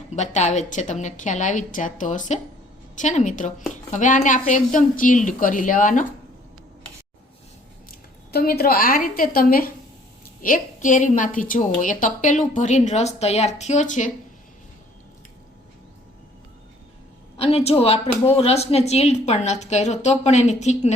બતાવે જ છે. તમને ખ્યાલ આવી જ જતો હશે છે ને મિત્રો. હવે આને આપણે એકદમ ચીલ્ડ કરી લેવાનો. તો મિત્રો આ રીતે તમે એક કેરીમાંથી જુઓ, એ તપેલું ભરીને રસ તૈયાર થયો છે. અને જો આપણે બહુ રસને ચીલ્ડ પણ નથી કર્યો, તો પણ એની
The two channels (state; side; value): normal; both; correlation 0.59